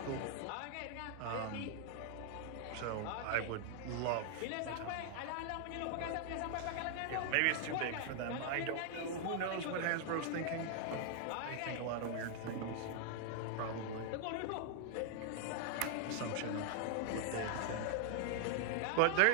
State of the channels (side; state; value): both; different; correlation 0.00